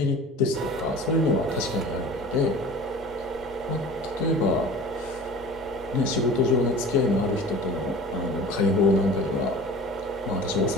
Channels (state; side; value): normal; both; correlation 0.41